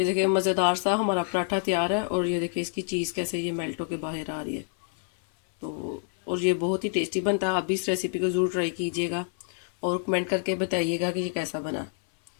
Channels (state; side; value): silent; right; 60 dB below the other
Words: देखिए मज़ेदार सा हमारा पराठा तैयार है और ये देखिए इसकी चीज़ कैसे ये मेल्ट होके बाहर आ रही है। तो और ये बहुत ही टेस्टी बनता है। आप भी इस रेसिपी को ज़रूर ट्राई कीजिएगा और कमेंट करके बताइएगा कि ये कैसा बना।